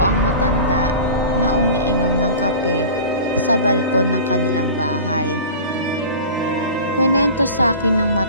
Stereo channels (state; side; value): inverted; both; correlation -0.37